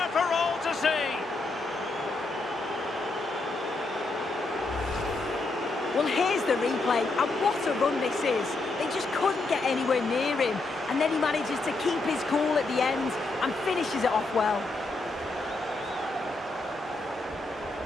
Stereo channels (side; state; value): right; quieter; 3.2 dB